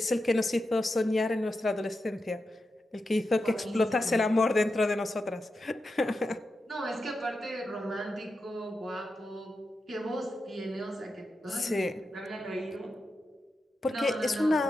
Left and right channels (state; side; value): normal; both; correlation 0.89